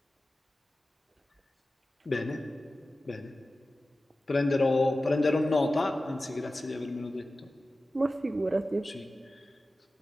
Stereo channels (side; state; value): both; normal; correlation 0.95